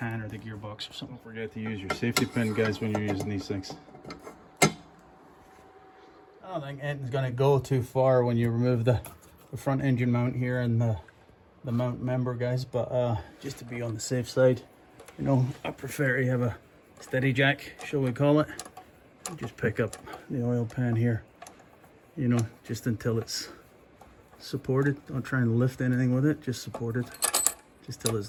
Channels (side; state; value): both; identical; correlation 1.00